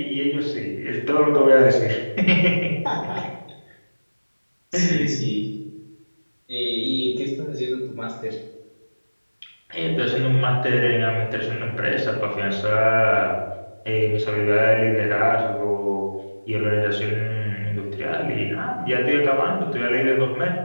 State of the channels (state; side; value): inverted; both; correlation -1.00